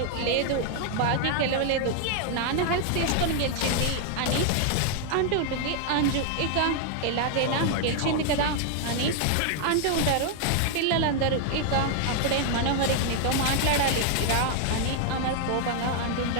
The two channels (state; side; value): different; both; correlation 0.00